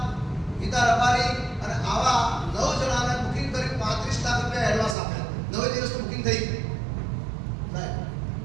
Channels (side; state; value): left; drops out; at 5.0 s